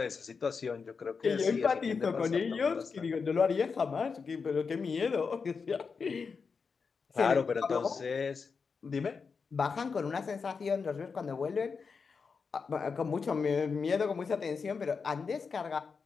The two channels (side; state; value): right; quieter; 5.3 dB